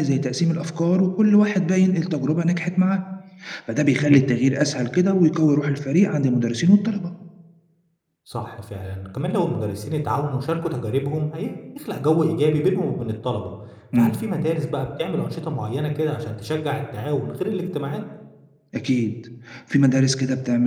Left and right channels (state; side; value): identical; both; correlation 1.00